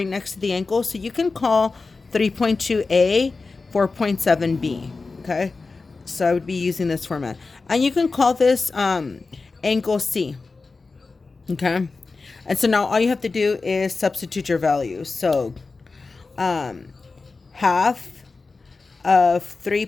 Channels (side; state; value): right; quieter; 4.0 dB